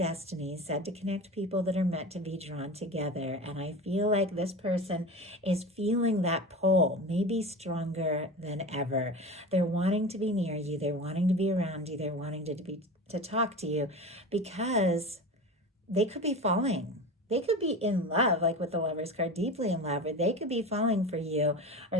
said to connect people that are meant to be drawn together. And I feel like this person is feeling that pull, maybe stronger than ever. They're wanting to be near you. They're wanting to be around you. They're wanting to talk to you, because they could be falling. They could be in love, like with the Lovers card, deeply in love, or they could be falling for you,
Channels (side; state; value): both; normal; correlation 0.30